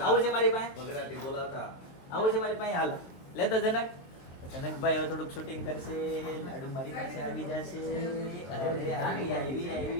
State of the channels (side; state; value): right; late; 23 ms